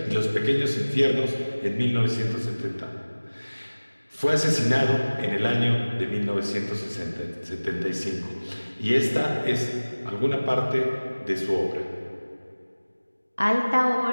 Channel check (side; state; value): both; inverted; correlation -1.00